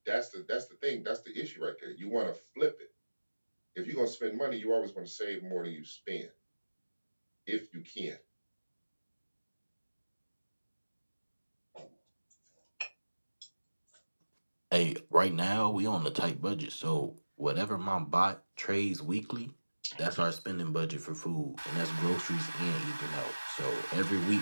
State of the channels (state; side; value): inverted; both; correlation -1.00